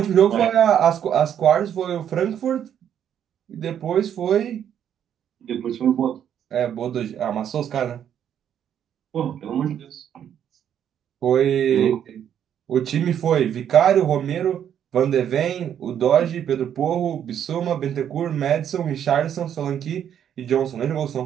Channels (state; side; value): quieter; left; 9.4 dB